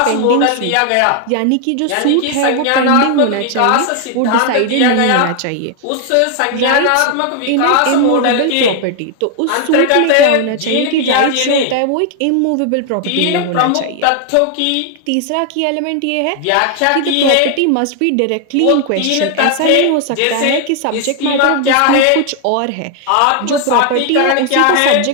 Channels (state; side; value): different; both; correlation 0.00